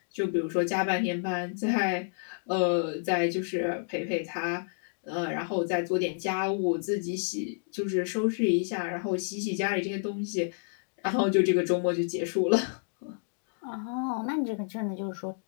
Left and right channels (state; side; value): silent; right; digital silence